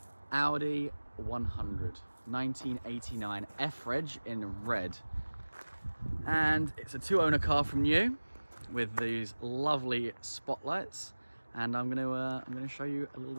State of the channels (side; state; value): both; inverted; correlation -1.00